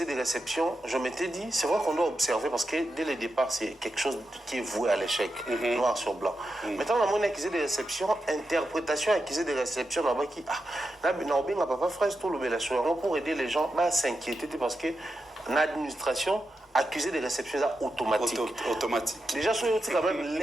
des réceptions, je m'étais dit, c'est vrai qu'on doit observer parce que dès le départ, c'est quelque chose qui est voué à l'échec, noir sur blanc. Maintenant, on a mon accusé des réceptions, interprétation accusé des réceptions, là-bas qui, papa frère, tout le pour aider les gens à s'inquiéter parce que l'administration, accusé de réception automatique. Déjà, sur quand même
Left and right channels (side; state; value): both; normal; correlation 0.88